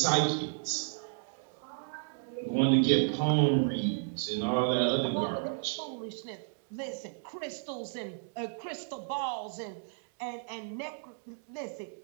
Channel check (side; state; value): left; silent; digital silence